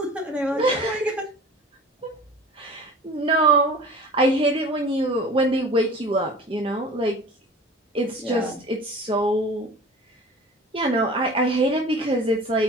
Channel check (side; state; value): both; normal; correlation 0.41